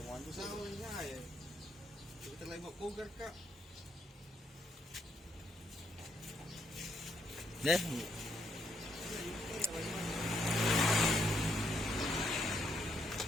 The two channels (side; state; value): both; normal; correlation 0.75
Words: Bago sa awal nga eh. Hindi talaga mag-cougar ka. Deh,